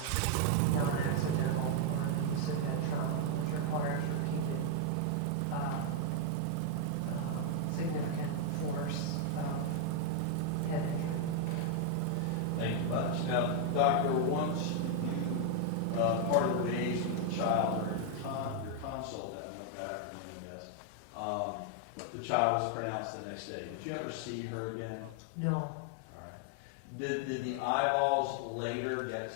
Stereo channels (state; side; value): different; both; correlation 0.00